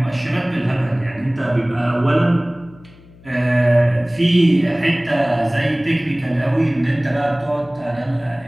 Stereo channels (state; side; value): noise; left; hum, 24 dB below the sound